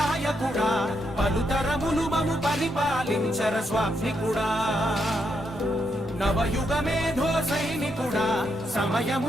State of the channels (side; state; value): both; normal; correlation 0.80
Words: పలుతరములు మము పరిపాలించర స్వామికుడా. నవయుగ మేధో సైనికుడా సమయము